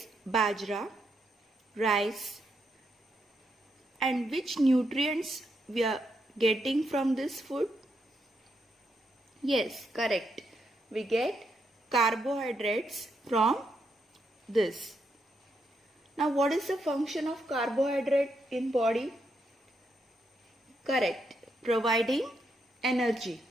bajra, rice. And which nutrients we are getting from this food? Yes, correct. We get carbohydrates from this. Now what is the function of carbohydrate in body? Correct, providing energy.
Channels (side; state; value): both; normal; correlation 0.80